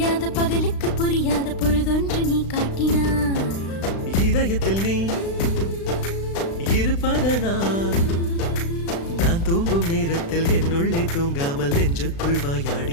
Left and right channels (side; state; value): right; late; 36 ms